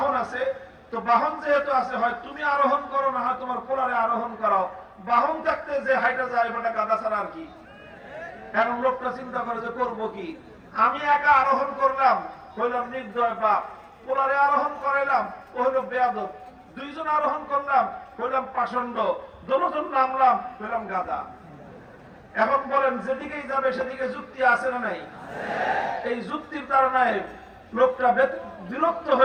আছে, তো বাহন যেহেতু আছে, হয় তুমি আরোহণ করো, না হয় তোমার পোলারে আরোহণ করাও। বাহন থাকতে যে হাইটা যায় বেটা গাধা ছাড়া আর কি। এখন লোকটা চিন্তা করে যে করবো কি? আমি একা আরোহণ করলাম, হইলাম নির্দয় বাপ। পোলারে আরোহণ করাইলাম, ও হইল বেয়াদব। 2 জন আরোহণ করলাম, হইলাম পাষণ্ড। দুজন নামলাম, হইলাম গাধা। এখন বলেন যেদিকেই যাবে সেদিকে যুক্তি আছে না নাই? এই যুক্তির কারণে লোকটা বিরক্ত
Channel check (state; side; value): identical; both; correlation 1.00